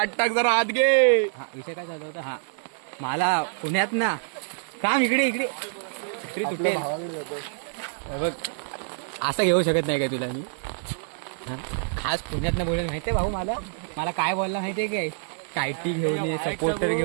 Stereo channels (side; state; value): left; silent; 61 dB below the other